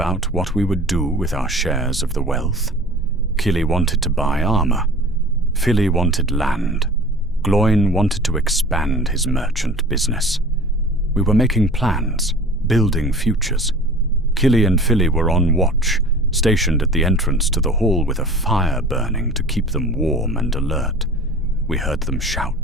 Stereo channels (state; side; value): normal; both; correlation 0.42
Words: what we would do with our shares of the wealth. Kili wanted to buy armor. Fili wanted land. Gloin wanted to expand his merchant business. We were making plans, building futures. Kili and Fili were on watch, stationed at the entrance to the hall with a fire burning to keep them warm and alert. We heard them